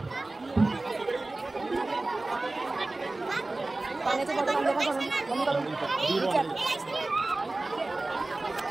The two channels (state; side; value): quieter; left; 3.0 dB